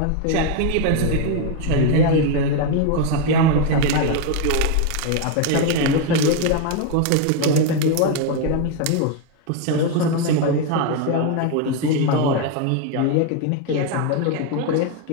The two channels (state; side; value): different; both; correlation 0.01